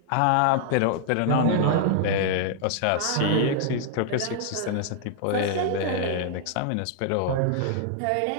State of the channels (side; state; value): both; different; correlation -0.01